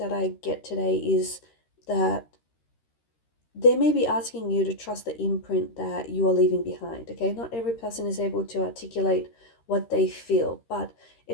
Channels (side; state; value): right; late; 13 ms